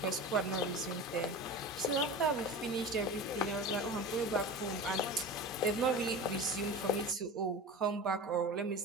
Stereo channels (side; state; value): both; normal; correlation 0.31